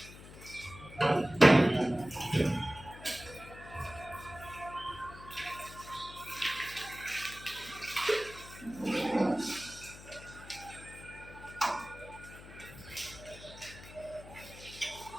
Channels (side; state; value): left; noise; hum, 16 dB below the sound